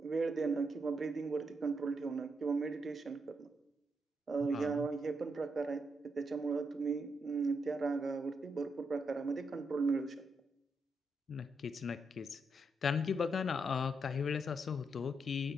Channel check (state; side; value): normal; both; correlation 0.80